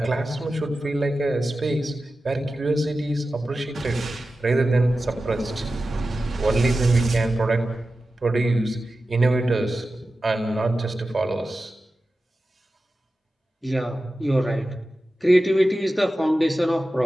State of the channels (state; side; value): normal; both; correlation 0.94